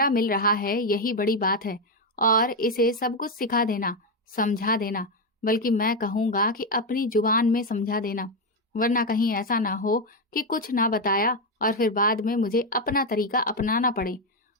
मिल रहा है यही बड़ी बात है। और इसे सब कुछ सिखा देना, समझा देना, बल्कि मैं कहूँगा कि अपनी जुबान में समझा देना, वरना कहीं ऐसा ना हो कि कुछ ना बताया और फिर बाद में मुझे अपना तरीका अपनाना पड़े।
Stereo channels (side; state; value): both; normal; correlation 0.07